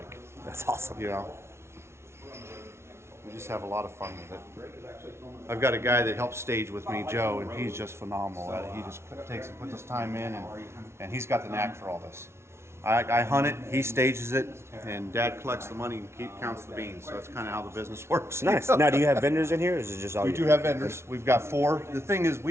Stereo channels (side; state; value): left; late; 0.13 ms